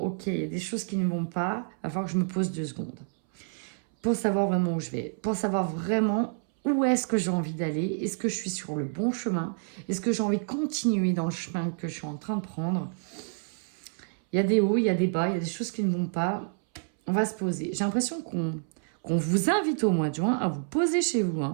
il y a des choses qui ne vont pas. Il va falloir que je me pose 2 secondes. pour savoir vraiment où je vais, pour savoir vraiment où est-ce que j'ai envie d'aller, est-ce que je suis sur le bon chemin, est-ce que j'ai envie de continuer dans le chemin que je suis en train de prendre. Il y a des hauts, il y a des bas, il y a des choses qui ne vont pas. On va se poser. J'ai l'impression qu'on vous invite au mois de juin à vous poser chez vous.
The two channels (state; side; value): silent; left; 59 dB below the other